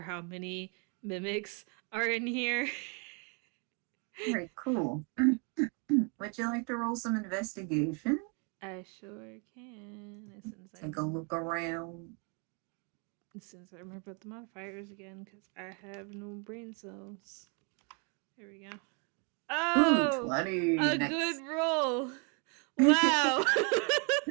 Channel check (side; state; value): left; quieter; 36.5 dB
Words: how many mimics are in here. Right, cool. Would you like to roll some investigation? I sure can. Take a look around. Since I remember the modifiers again, because I have no brain cells. There we go. Ooh, Oh, 20. a good Nice. roll. Wow.